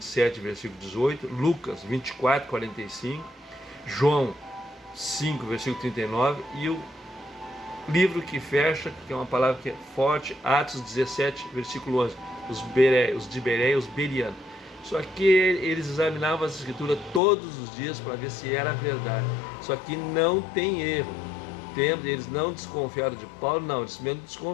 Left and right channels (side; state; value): right; drops out; at 17.2 s